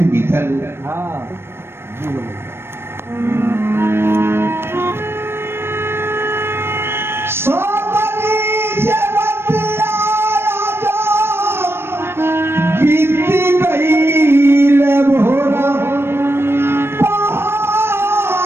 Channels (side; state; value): left; late; 0.12 ms